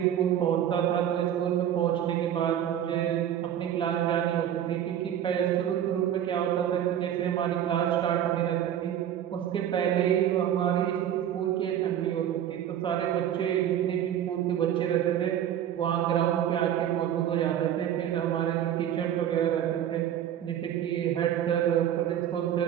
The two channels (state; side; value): quieter; left; 10.5 dB